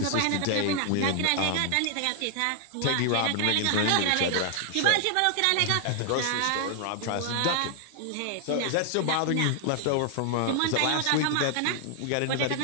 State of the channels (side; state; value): both; different; correlation 0.00